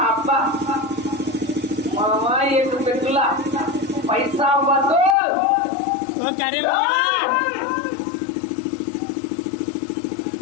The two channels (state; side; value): drops out; right; at 5.2 s